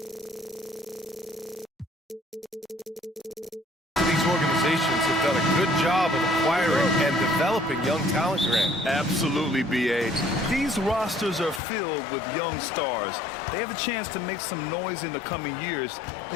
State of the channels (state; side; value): drops out; right; at 11.6 s